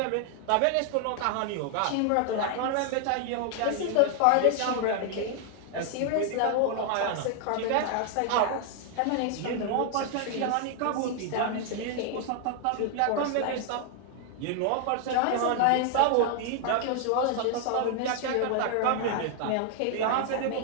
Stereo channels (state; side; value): different; both; correlation 0.00